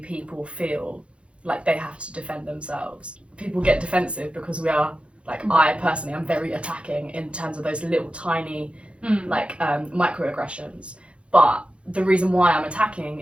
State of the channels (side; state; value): left; late; 0.060 ms